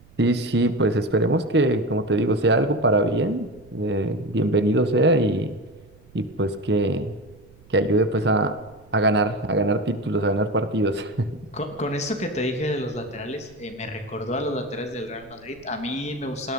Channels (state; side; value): noise; right; rumble, 27 dB below the sound